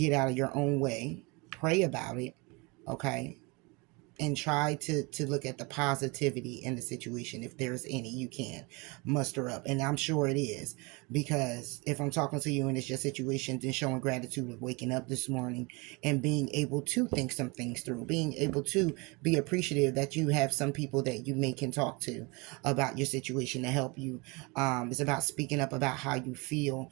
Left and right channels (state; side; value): quieter; left; 28.0 dB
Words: out of your own way. Pray about it. Okay. and try to look at the positivity in the situation. If there's any you can muster up, and I'm sure it is, because if I'm talking to you and it's your situation, then showing gratitude of waking up this morning and being able to think some things through, being able to be appreciative that you have some people that you may can talk to about your situation to help you. It's about speaking up about how you feel